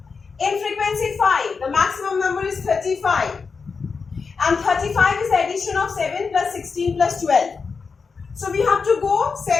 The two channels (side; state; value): right; quieter; 5.1 dB